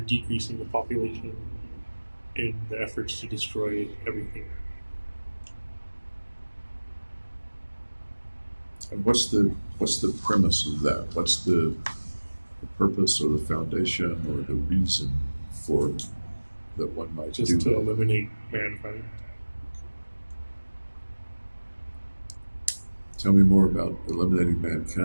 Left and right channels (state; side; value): inverted; both; correlation -1.00